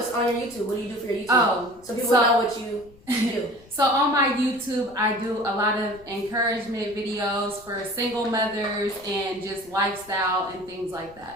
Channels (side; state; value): left; noise; rumble, 25 dB below the sound